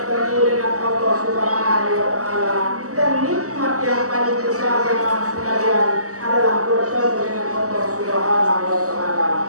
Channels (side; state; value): left; late; 0.66 ms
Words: dengan Allah Subhanahu wa Ta'ala. Dan nikmat yang paling besar jemaah sekalian adalah bertemu dengan Allah Subhanahu wa